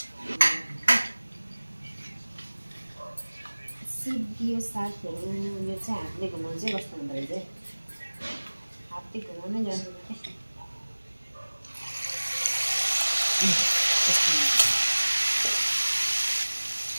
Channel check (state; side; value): inverted; both; correlation -1.00